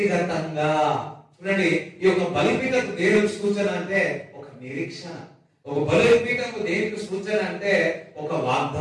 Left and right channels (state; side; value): identical; both; correlation 1.00